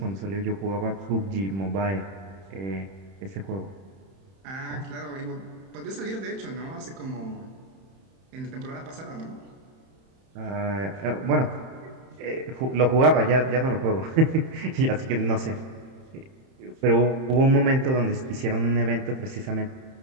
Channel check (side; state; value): left; late; 31 ms